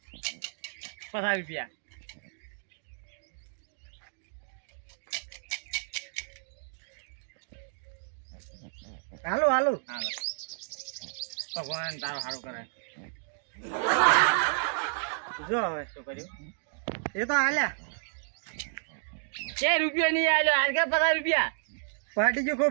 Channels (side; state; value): left; silent; digital silence